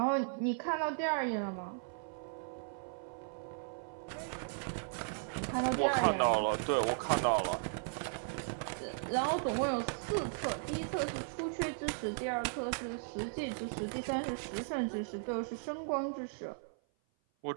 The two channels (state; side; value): silent; left; 53 dB below the other